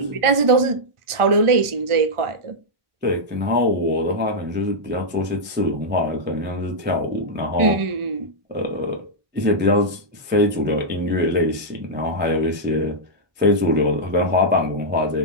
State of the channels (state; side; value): late; left; 1.4 ms